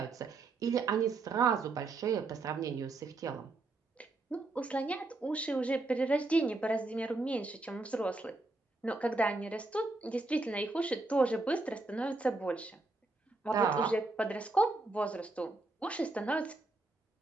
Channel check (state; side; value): quieter; left; 3.2 dB